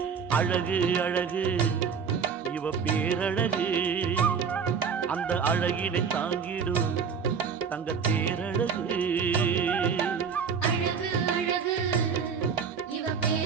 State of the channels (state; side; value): quieter; left; 6.3 dB